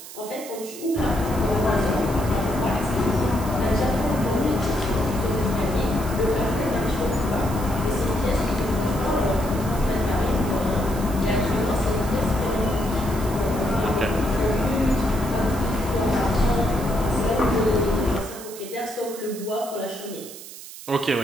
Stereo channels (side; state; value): right; noise; hiss, 14 dB below the sound